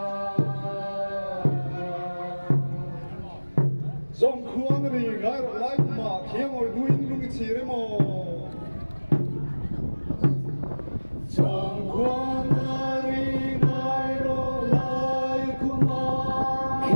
dòng khuôn rì ngay rồi lại mà khi ngồi đuôi lúc cái gì đấy mà dòng khuôn rì ngay rồi lại mà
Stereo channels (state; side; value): inverted; both; correlation -1.00